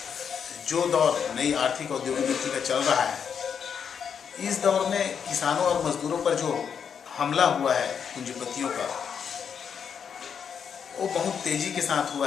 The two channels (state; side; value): quieter; right; 7.2 dB